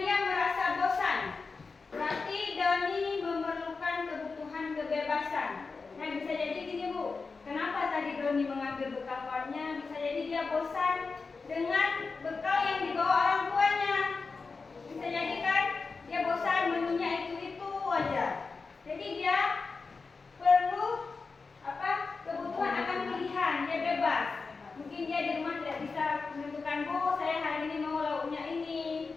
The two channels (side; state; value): right; quieter; 4.4 dB